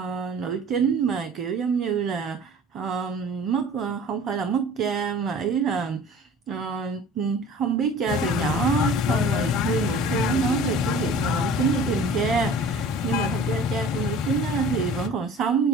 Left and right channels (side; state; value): both; normal; correlation 0.44